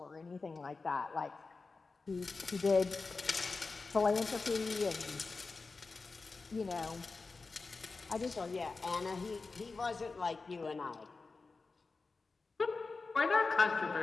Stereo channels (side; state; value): right; quieter; 4.1 dB